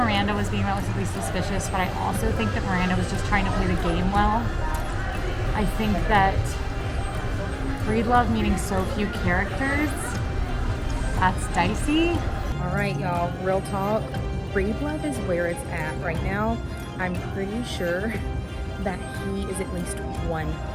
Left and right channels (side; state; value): both; identical; correlation 1.00